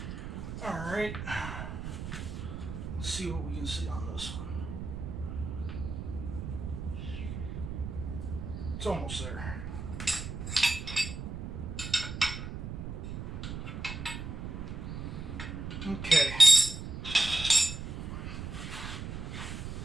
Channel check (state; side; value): noise; right; rumble, 6 dB below the sound